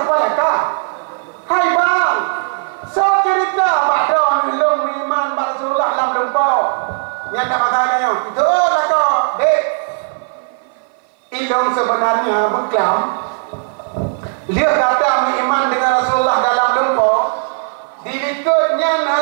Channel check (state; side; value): silent; left; 56 dB below the other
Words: lah kah? Hai bang. So cerita pada lo beriman Rasulullah dalam lumpau. Yang tak masalahnya. Itu lah kau. Dek. Ilong sebenarnya berkelam. Dia kata beriman dengan Rasulullah dalam lumpau. Dilikutnya